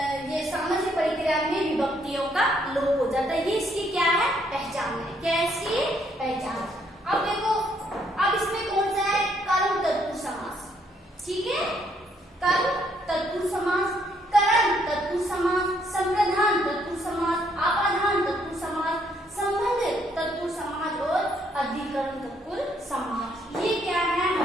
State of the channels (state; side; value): normal; both; correlation 0.70